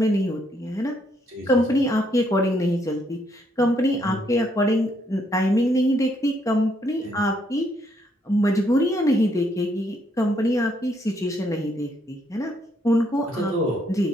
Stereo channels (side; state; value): both; normal; correlation 0.72